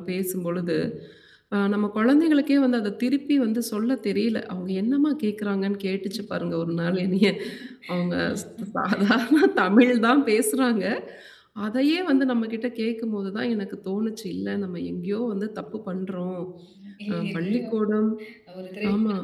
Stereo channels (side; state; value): both; identical; correlation 1.00